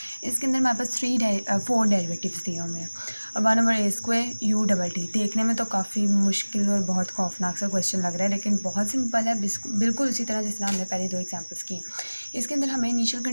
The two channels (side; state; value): both; inverted; correlation -1.00